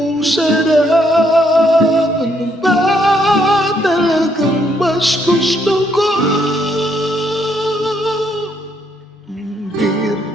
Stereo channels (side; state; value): both; normal; correlation 0.72